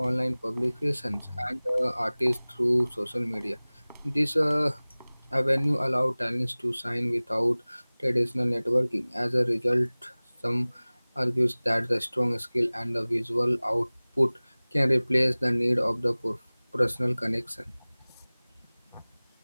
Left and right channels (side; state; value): both; inverted; correlation -1.00